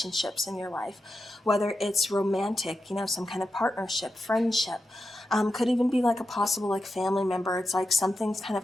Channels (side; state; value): both; normal; correlation 0.89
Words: in your life, whether it's romantic, some kind of partnership, friendship. Could even be like a possible like family member. It's like something's kind